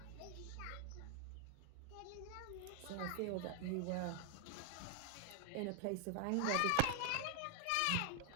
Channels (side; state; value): both; different; correlation 0.00